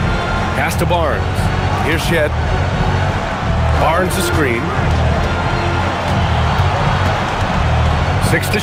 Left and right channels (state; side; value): identical; both; correlation 1.00